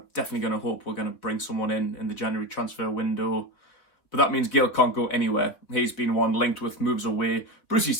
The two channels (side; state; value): right; late; 3.8 ms